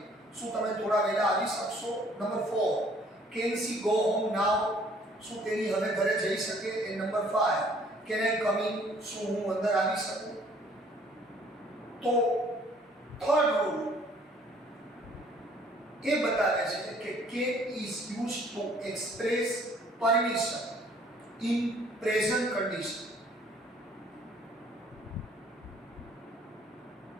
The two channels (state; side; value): normal; both; correlation 0.58